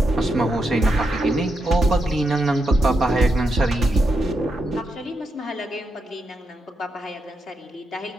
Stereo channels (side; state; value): both; normal; correlation 0.83